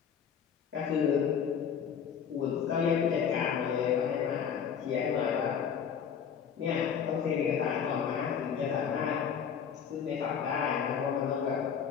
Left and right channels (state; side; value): quieter; right; 7.5 dB